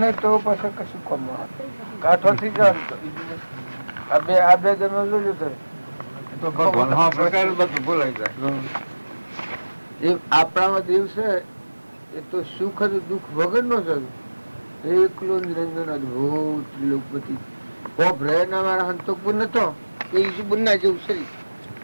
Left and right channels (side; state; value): both; inverted; correlation -1.00